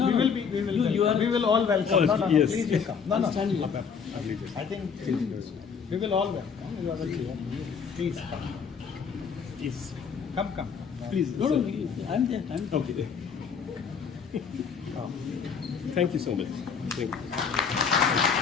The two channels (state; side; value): quieter; right; 6.3 dB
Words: we will all welcome. Oh, No, yes. please you come. No. Stand here. I think we will all welcome. You are the chair. Please come. Please. Come. Please. No, I'm there. Okay. Thank you so much. Thank you.